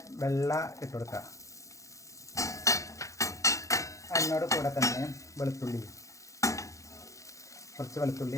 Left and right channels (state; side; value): late; right; 0.15 ms